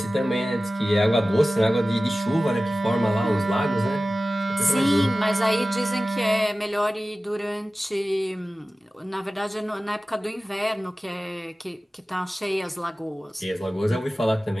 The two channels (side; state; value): both; normal; correlation 0.96